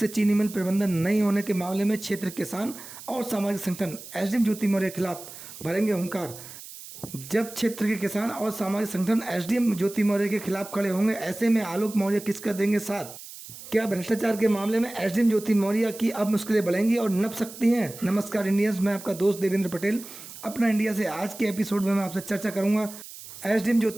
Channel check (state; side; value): noise; right; hiss, 15 dB below the sound